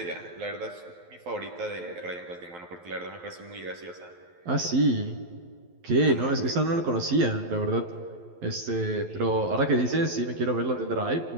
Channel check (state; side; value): late; left; 11 ms